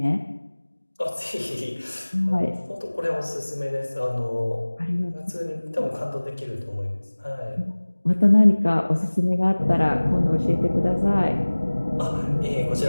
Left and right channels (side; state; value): both; inverted; correlation -1.00